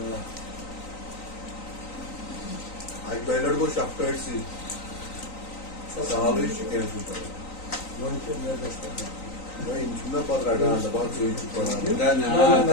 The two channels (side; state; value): right; late; 3.9 ms